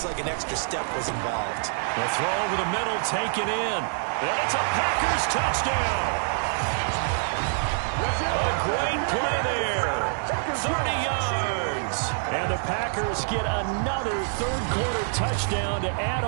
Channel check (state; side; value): silent; left; digital silence